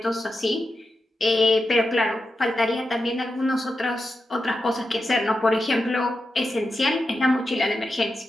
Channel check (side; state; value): both; normal; correlation 0.89